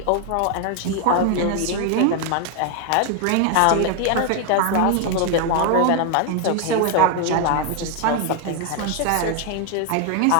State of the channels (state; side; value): different; both; correlation 0.01